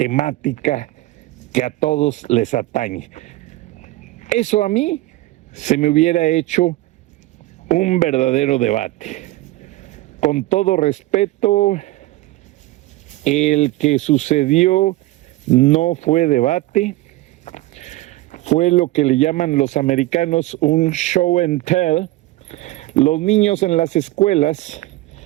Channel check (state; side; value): quieter; left; 18.2 dB